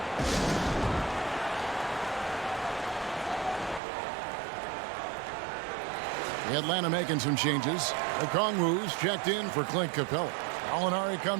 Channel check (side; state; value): left; drops out; at 3.8 s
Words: Atlanta making some changes. Okongwu's checked in for Clint Capella. Alinari